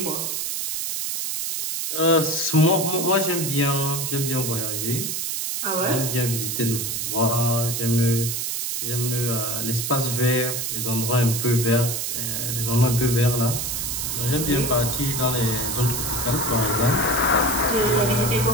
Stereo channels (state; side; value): noise; right; hiss, 2 dB below the sound